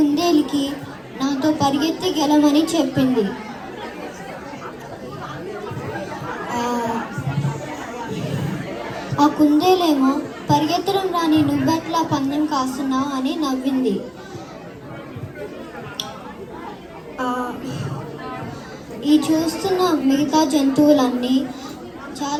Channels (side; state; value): both; identical; correlation 1.00